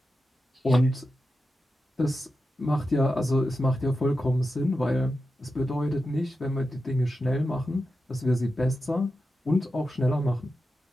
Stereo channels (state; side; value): normal; both; correlation 0.90